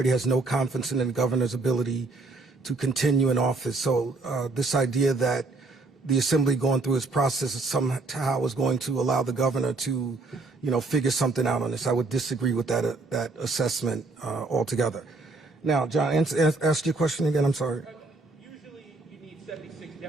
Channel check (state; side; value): quieter; left; 3.5 dB